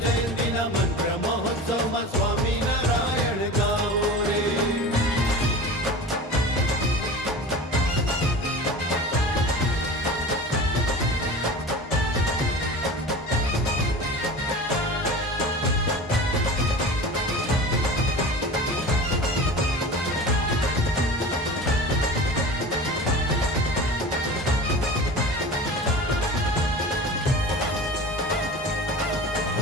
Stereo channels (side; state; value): both; normal; correlation 0.35